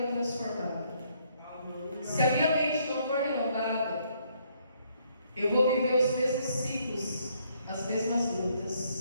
transformada. Se a minha mente não for renovada, eu vou viver os mesmos ciclos, as mesmas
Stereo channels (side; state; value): both; inverted; correlation -0.69